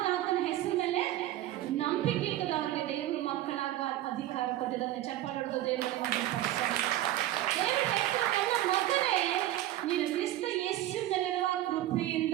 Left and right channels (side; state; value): left; quieter; 14.3 dB